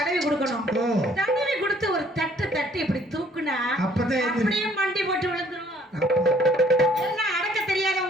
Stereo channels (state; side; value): normal; both; correlation 0.61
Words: கொடுக்கணும். தடவி கொடுத்து ஒரு தட்டு தட்டி இப்படி தூக்குனா அப்படியே மண்டி போட்டு விழுந்துருவோம். என்ன அடக்க